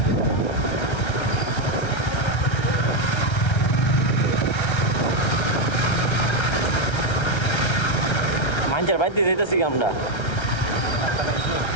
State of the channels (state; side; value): late; right; 1.3 ms